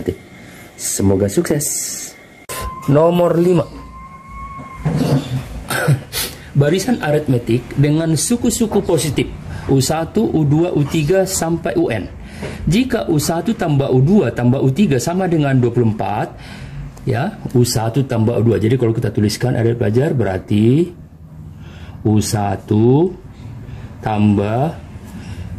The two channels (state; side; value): identical; both; correlation 1.00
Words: Semoga sukses. Nomor 5. Barisan aritmetik dengan suku-suku positif U1, U2, U3 sampai UN. Jika U1 tambah U2 tambah U3 sama dengan 24, ya, U1 tambah U2. Jadi kalau kita tuliskan adik pelajar berarti U1 tambah